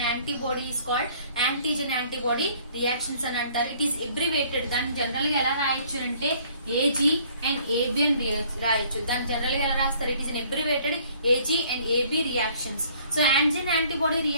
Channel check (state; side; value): inverted; both; correlation -0.58